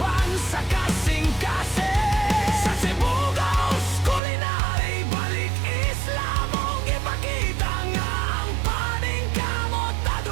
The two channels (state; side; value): drops out; left; at 4.2 s